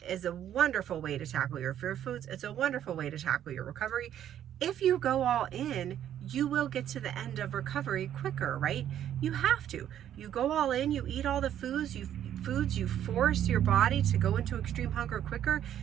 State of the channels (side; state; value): left; quieter; 10.6 dB